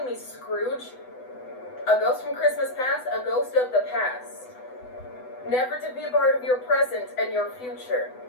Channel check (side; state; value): right; late; 8.0 ms